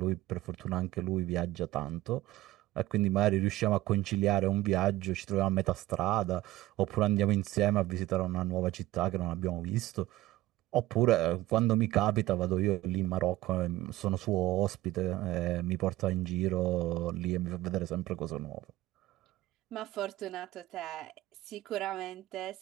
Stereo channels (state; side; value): quieter; left; 16.7 dB